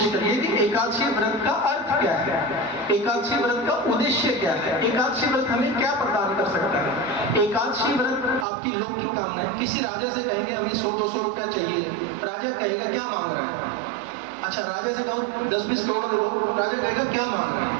करिए कि एकादशी व्रत का अर्थ क्या है, एकादशी व्रत का उद्देश्य क्या है, एकादशी व्रत हमें क्या प्रदान कर सकता है। एकादशी व्रत आपकी लौकिक कामना है। किसी राजा से कहेंगे हमें 100-200 रुपया चाहिए, राजा कहेगा क्या मांग रहा है। अच्छा, राजा से कहो 10-20 करोड़ लोग, राजा कहेगा क्या मांग रहा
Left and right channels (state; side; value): drops out; left; at 8.5 s